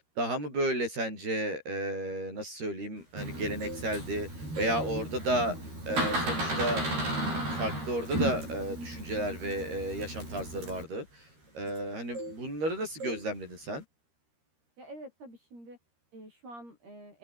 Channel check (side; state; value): left; late; 13 ms